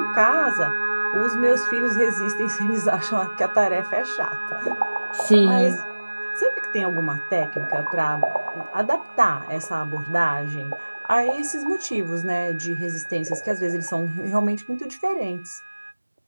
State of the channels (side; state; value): both; inverted; correlation -1.00